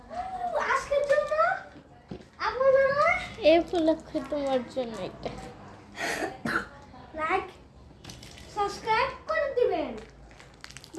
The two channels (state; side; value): identical; both; correlation 1.00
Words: আজকের জন্য আপনারা এই উপলক্ষে তোমার জন্য একটা লাইক সাবস্ক্রাইব করে দিবেন।